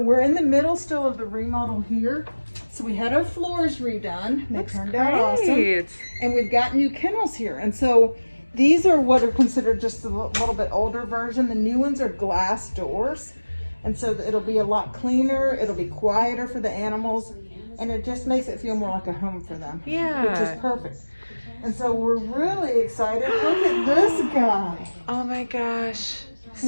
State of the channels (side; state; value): both; inverted; correlation -1.00